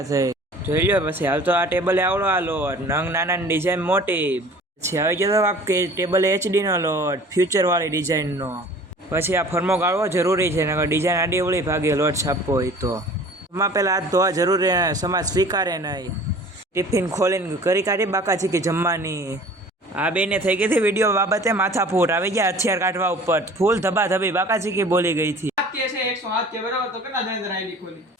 થઈ। જોઈ લ્યો પછી હાલ તો આ ટેબલે આવડો આ લોટ, નંગ નાના ડિઝાઇન મોટી। પછી આવી ગયો તો કે ટેબલ HD નો લોટ, ફ્યુચર વાળી ડિઝાઇનનો। પછી આ ફરમો ગાળવો જરૂરી છે, નકર ડિઝાઇન આડી અવળી ભાગે લોટ છાપવો હોય તો। એમાં પહેલાં હાથ ધોવા જરૂરી, સમાજ સ્વીકારે નહીં। ટિફિન ખોલીને કરી કાઢી બાકાચીકી જમવાની। આ બેને થઈ ગઈ હતી વિડીયો બાબતે માથાફૂટ, આવી ગયા હથિયાર કાઢવા ઉપર, ફૂલ ધબાધબી બાકાચીકી બોલી ગઈ હતી।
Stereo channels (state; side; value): normal; both; correlation 0.46